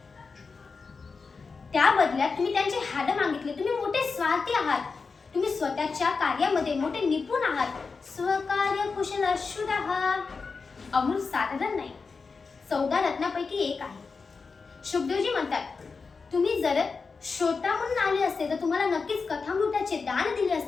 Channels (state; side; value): quieter; right; 4.7 dB